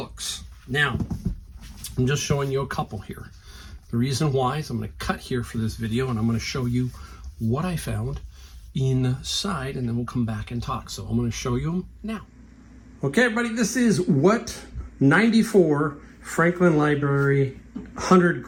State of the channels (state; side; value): identical; both; correlation 1.00